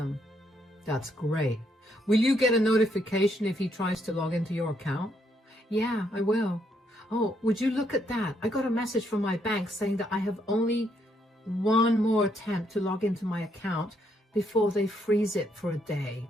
"That's great. Will you get a notification if he tries to log into your account?" "Yeah, I will. Oh, would you look at that? I got a message from my bank saying that I have only one more attempt to log into my account before they freeze it for a day."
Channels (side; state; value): both; normal; correlation 0.74